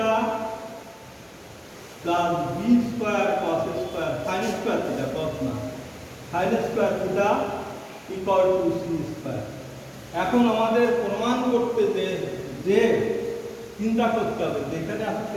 plus b square cos square sin square theta cos না sin square theta equal to c square। এখন আমাদের প্রমাণ করতে যে চিন্তা করতে হবে যেখানে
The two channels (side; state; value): both; identical; correlation 1.00